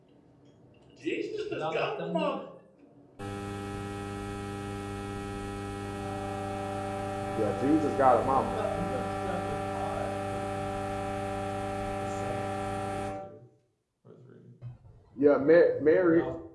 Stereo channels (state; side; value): identical; both; correlation 1.00